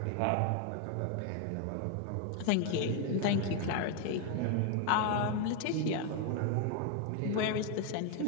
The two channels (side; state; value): both; different; correlation 0.00